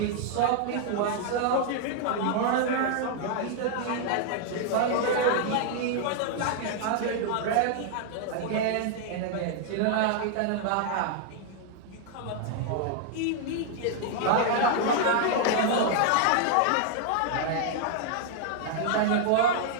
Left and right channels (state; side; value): different; both; correlation 0.00